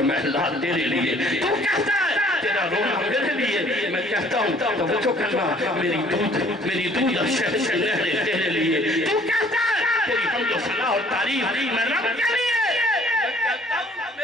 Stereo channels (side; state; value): both; normal; correlation 0.57